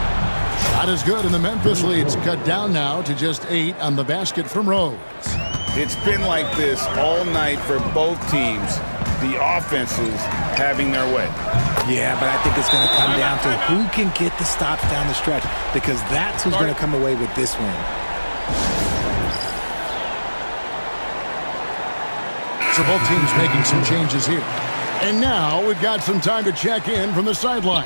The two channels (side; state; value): both; inverted; correlation -1.00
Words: Shot is good, and the Memphis lead's cut down now to just 8 on the basket from Rose. It's been like this all night for both teams. The offenses having their way. Yeah, but I think it's going to come down to who can get the stops down the stretch, because that's who's going to come away with this win. So both teams making some changes here. And now we've got some time to check in from the